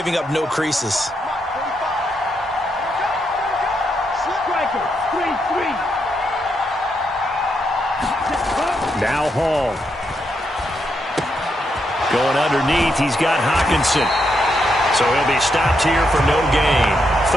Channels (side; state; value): both; normal; correlation 0.80